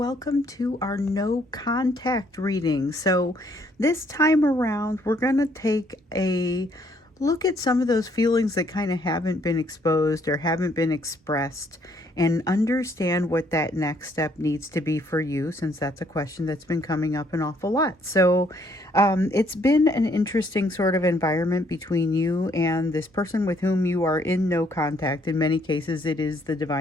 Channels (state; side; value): normal; both; correlation 0.67